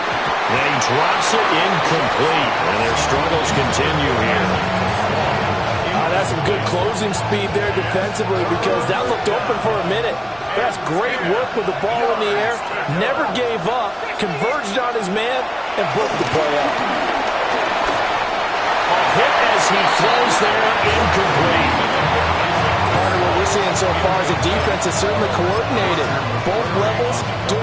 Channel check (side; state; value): both; identical; correlation 1.00